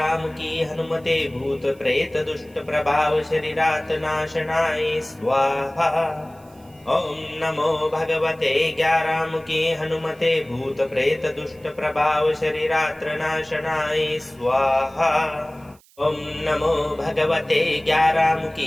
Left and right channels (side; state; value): right; noise; hiss, 29 dB below the sound